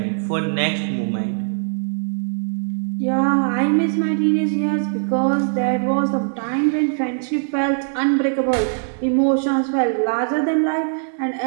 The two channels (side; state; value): left; silent; digital silence